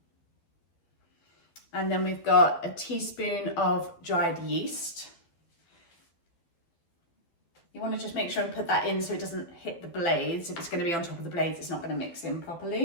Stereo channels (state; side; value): late; right; 12 ms